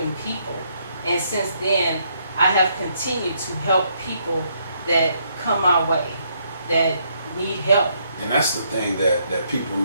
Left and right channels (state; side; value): inverted; both; correlation -0.73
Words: people. And since then, I have continued to help people that come my way, that need help. And that's the thing that people